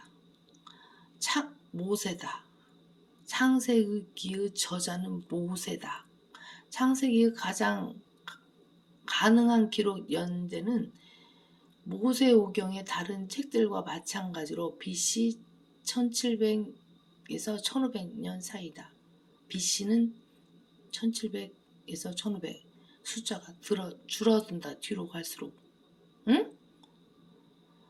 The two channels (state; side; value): identical; both; correlation 1.00